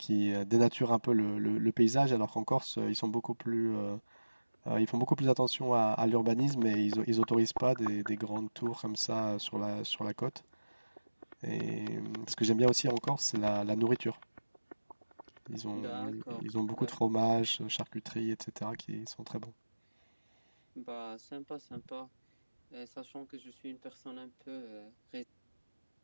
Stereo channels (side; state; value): both; inverted; correlation -1.00